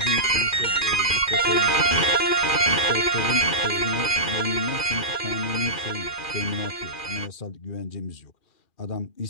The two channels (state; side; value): late; right; 2.4 ms